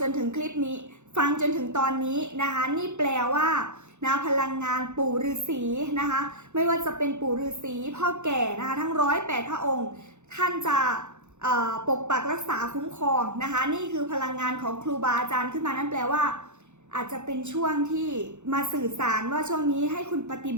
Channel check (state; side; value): late; left; 0.83 ms